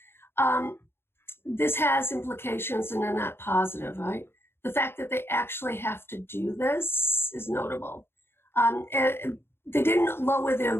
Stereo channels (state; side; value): late; right; 0.11 ms